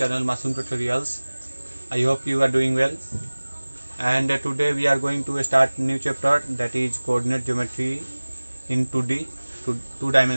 Masoom Tutorials. I hope you are doing well and today we are going to start new chapter, that is coordinate geometry in 2D two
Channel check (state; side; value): inverted; both; correlation -1.00